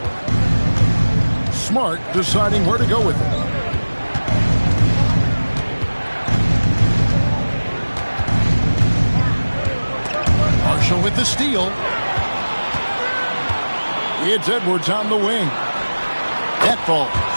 Smart deciding where to go with it. Marshall with the steal. It's Edwards on the wing. That falls.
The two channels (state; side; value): inverted; both; correlation -1.00